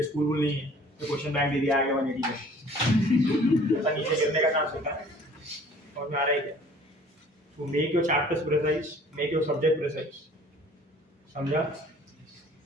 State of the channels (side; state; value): both; normal; correlation 0.51